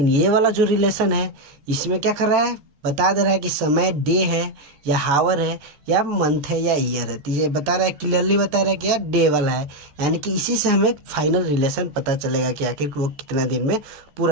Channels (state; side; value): late; left; 14 ms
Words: ये वाला जो रिलेशन है इसमें क्या कर रहा है, बता दे रहा है कि समय डे है या हावर है या मंथ है या ईयर है। तो ये बता रहा है, क्लियरली बता रहा है कि यार डे वाला है, यानी कि इसी से हमें फाइनल रिलेशन पता चलेगा कि आखिर वो कितना दिन में